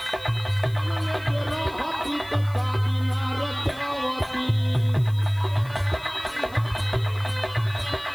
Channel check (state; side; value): noise; left; hiss, 23 dB below the sound